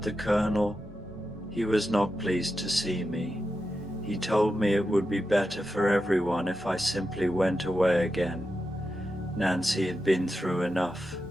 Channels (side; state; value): both; normal; correlation 0.89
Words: the Colonel, he was not pleased to see me. He told me it would be better for everyone if I simply went away again. Nancy had been through enough,